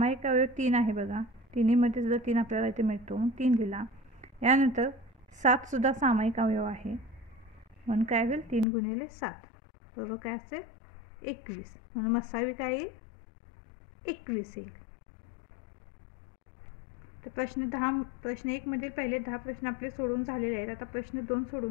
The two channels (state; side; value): drops out; right; at 8.7 s